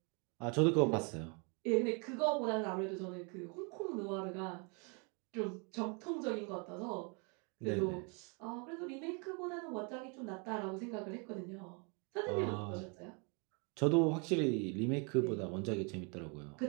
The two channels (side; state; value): left; quieter; 34.5 dB